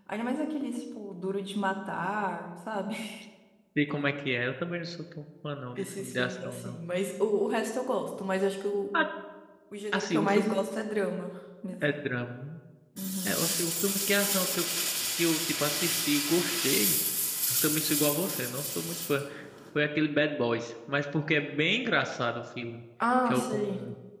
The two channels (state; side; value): identical; both; correlation 1.00